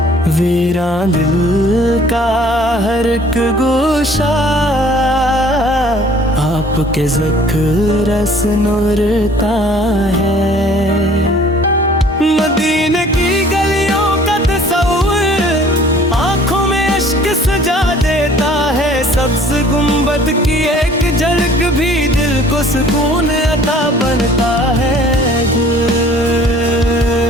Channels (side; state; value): both; normal; correlation 0.53